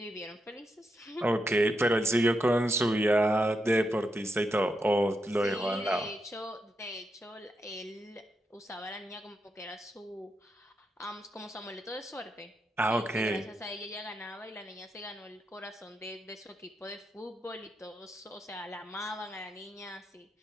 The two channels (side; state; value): both; normal; correlation 0.84